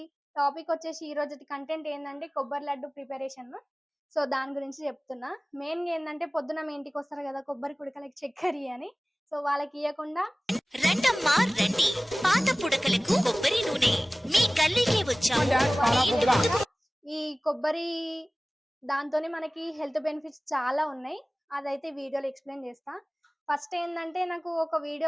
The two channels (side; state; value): both; normal; correlation 0.98